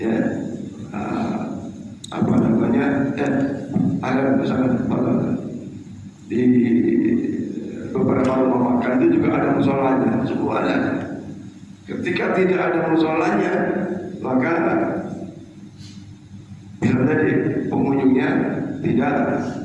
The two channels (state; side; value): identical; both; correlation 1.00